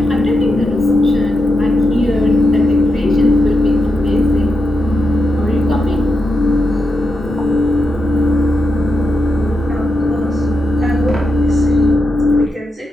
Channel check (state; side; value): normal; both; correlation 0.85